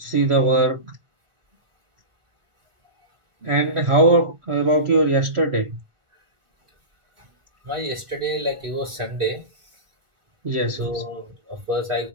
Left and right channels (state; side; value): late; left; 1.4 ms